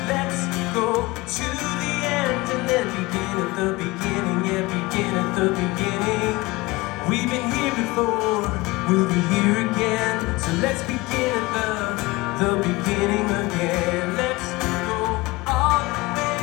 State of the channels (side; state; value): right; quieter; 21.9 dB